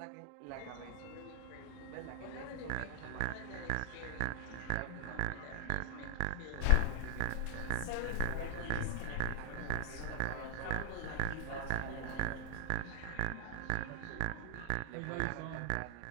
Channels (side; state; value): both; different; correlation 0.00